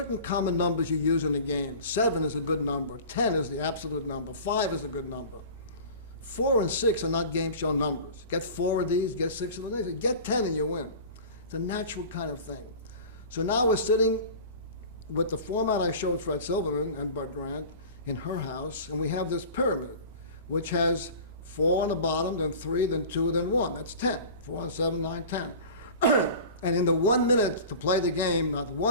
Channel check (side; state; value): both; inverted; correlation -0.38